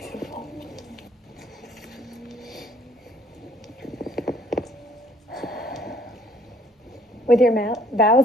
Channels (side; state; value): both; normal; correlation 0.61